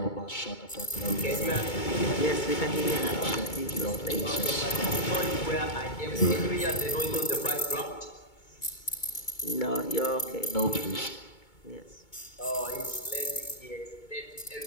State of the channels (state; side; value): late; right; 2.2 ms